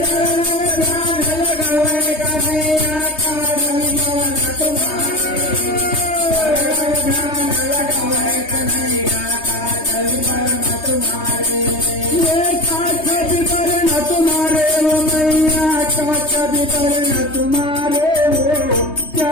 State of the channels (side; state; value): right; late; 3.2 ms